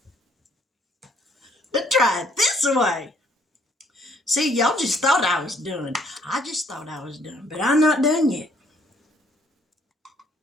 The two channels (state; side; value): normal; both; correlation 0.65